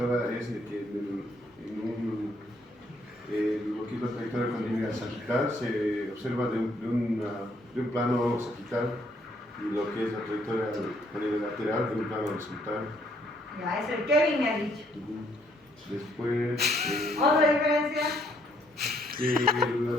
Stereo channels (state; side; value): normal; both; correlation 0.68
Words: es que lo que es la trayectoria condilia sagital se observa de un plano sagital y lo que es la trayectoria condilia lateral de un plano horizontal. Ya, es el Kevin me ha dicho. Después, ¿Otra diferencia? la